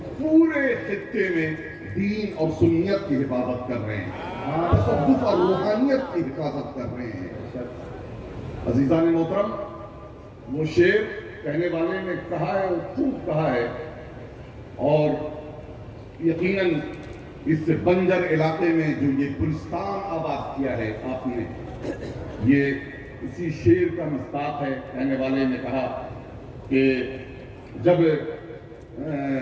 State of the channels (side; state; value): both; identical; correlation 1.00